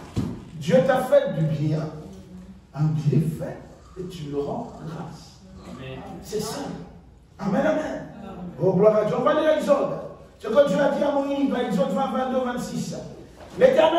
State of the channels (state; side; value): identical; both; correlation 1.00